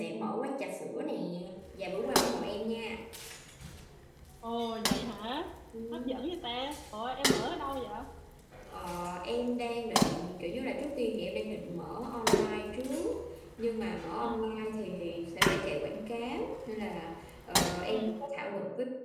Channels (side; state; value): both; identical; correlation 1.00